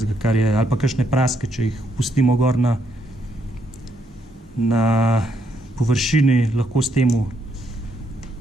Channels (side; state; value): both; normal; correlation 0.74